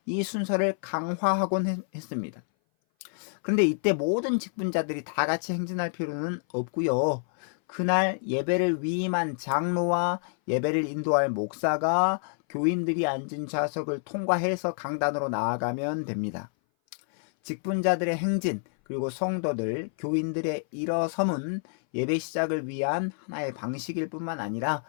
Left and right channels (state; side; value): silent; right; 58 dB below the other